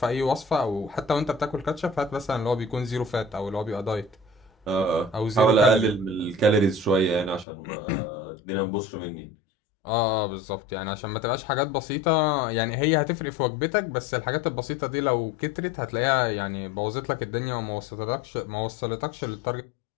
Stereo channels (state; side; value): drops out; right; at 7.5 s